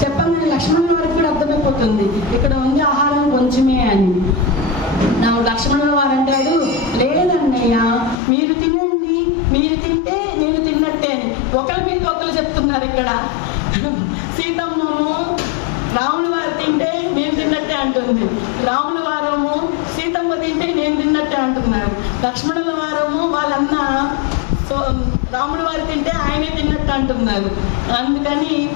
చెప్పగానే లక్ష్మణుల వారికి కూడా అర్థమైపోతుంది ఇక్కడ ఉంది ఆహారం కొంచెమే అని. లక్ష్మణుల వారు అంటాడు, లేదన్నయ్య మీరు తినండి, మీరు తింటే నేను తిన్నట్టే. ఒకరి మీద ఒకరు చెప్తున్నారు ఇక్కడ. సీతమ్మము రాముల వారు తింటే నేను తిన్నట్టే అంటుంది, రాముల వారము సీతమ్మ తింటే నేను తిన్నట్టే అంటున్నారు. లక్ష్మణుల వారము వాళ్ళన్న రాముడు వారు తింటే ఆయనే తిన్నట్టు అంటున్నారు. అందుకని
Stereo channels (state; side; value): drops out; right; at 8.2 s